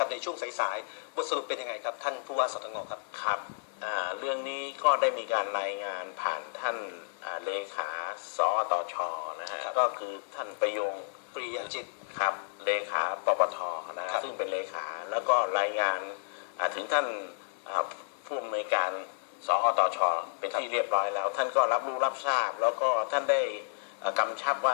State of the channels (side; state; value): right; silent; 57 dB below the other